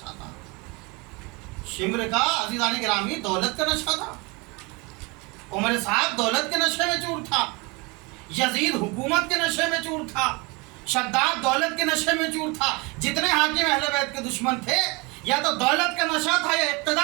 تھا۔ شمر کا عزیزان گرامی دولت کا نشہ تھا، عمر صاحب دولت کے نشے میں چور تھا، یزید حکومت کے نشے میں چور تھا، شداد دولت کے نشے میں چور تھا۔ جتنے حاکم اہل بیت کے دشمن تھے، یا تو دولت کا نشہ تھا یا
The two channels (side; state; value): left; quieter; 27.3 dB